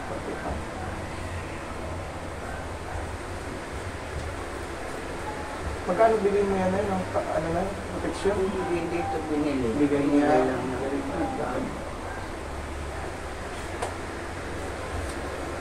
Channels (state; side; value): identical; both; correlation 1.00